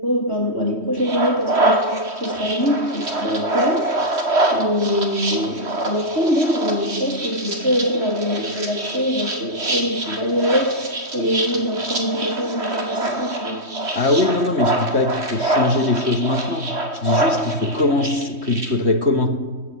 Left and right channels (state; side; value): late; left; 3.1 ms